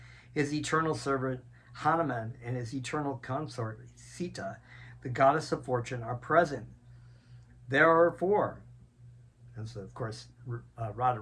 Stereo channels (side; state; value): both; identical; correlation 1.00